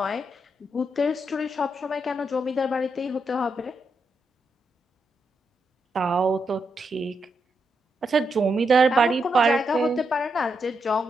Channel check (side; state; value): both; normal; correlation 0.82